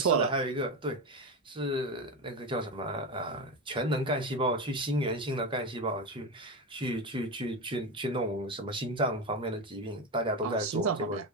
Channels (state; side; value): normal; both; correlation 0.17